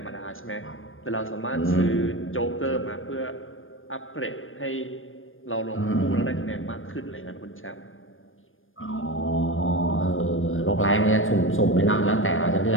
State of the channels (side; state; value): right; late; 0.59 ms